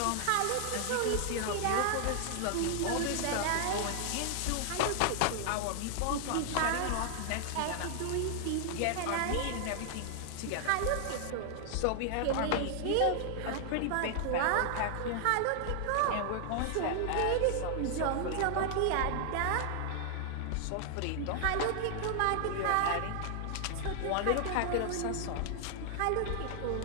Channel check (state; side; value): different; both; correlation 0.00